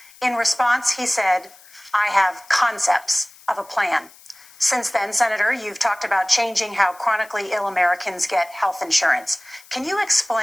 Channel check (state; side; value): noise; left; hiss, 24 dB below the sound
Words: In response, he said, "I have concepts of a plan." Since then, Senator, you've talked about changing how chronically ill Americans get health insurance. Can you